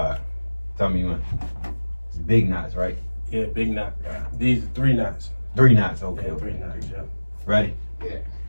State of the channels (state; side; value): inverted; both; correlation -1.00